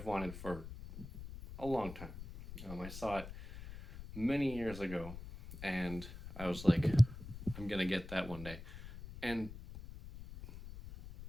wanted for a long time. I saw it many years ago and I was like, I'm gonna get that one day. And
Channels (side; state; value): left; noise; rumble, 12 dB below the sound